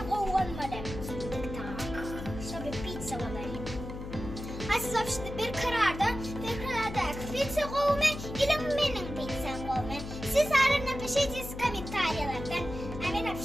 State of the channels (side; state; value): left; noise; hum, 9 dB below the sound